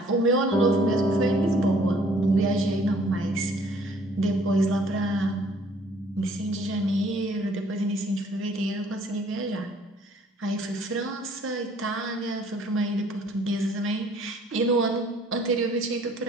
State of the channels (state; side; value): normal; both; correlation 0.59